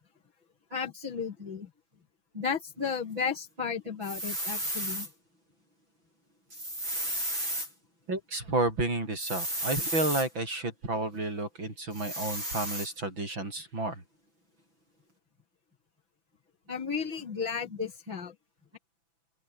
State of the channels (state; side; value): late; left; 6.0 ms